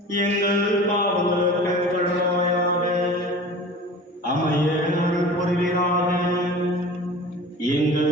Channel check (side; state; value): both; normal; correlation 0.38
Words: எங்கள் பாவங்களுக்கு கழுவாயாக அமைய அருள் புரிவீராக.